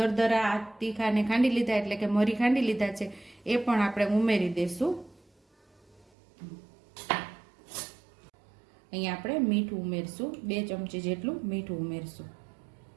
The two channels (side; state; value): left; drops out; at 6.1 s